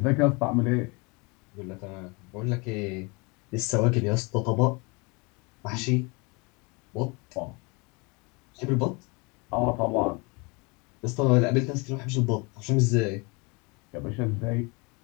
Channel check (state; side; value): quieter; right; 28.8 dB